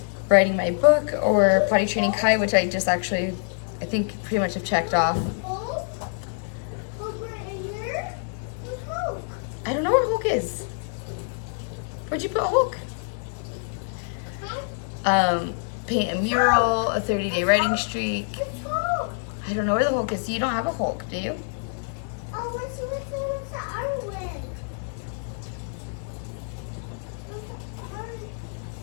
writing my book or potty training Kai, which I just actually, I think, pretty much have checked off. I don't know where Hulk is. Where'd you put Hulk? Paint a mural, a 30-day writing streak. I don't know where the Hulk is. You don't have a Hulk, do you? Oh, what's with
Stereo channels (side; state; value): right; silent; 61 dB below the other